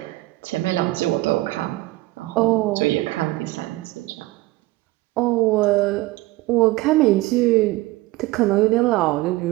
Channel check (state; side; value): quieter; left; 19.1 dB